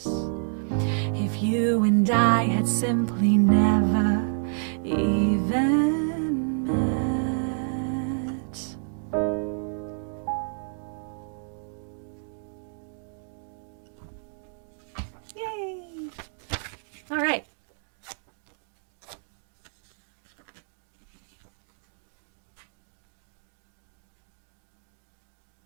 If you and I had simply never even met. Yay! All right.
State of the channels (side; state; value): left; silent; digital silence